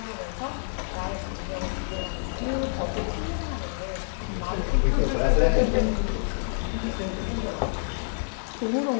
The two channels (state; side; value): silent; right; digital silence